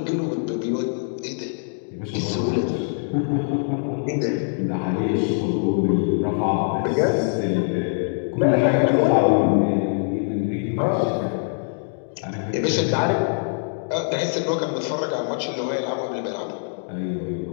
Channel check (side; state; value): right; silent; digital silence